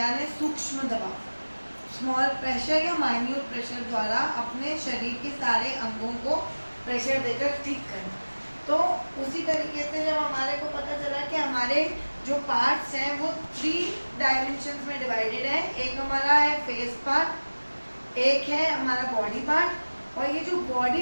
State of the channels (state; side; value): inverted; both; correlation -1.00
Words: सूक्ष्म दबाव, स्मॉल प्रेशर या माइन्यूट प्रेशर द्वारा अपने शरीर के सारे अंगों को प्रेशर देकर ठीक करना। तो उसी तरीके से जब हमारे को पता चला कि हमारे जो पार्ट्स हैं वो 3 डायमेंशंस में डिवाइडेड है। एक हमारा है फेस पार्ट, एक है हमारा बॉडी पार्ट, और ये जो